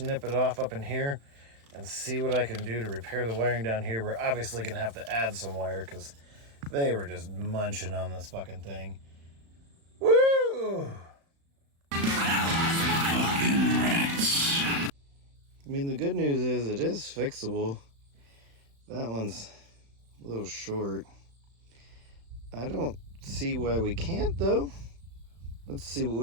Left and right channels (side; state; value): left; late; 35 ms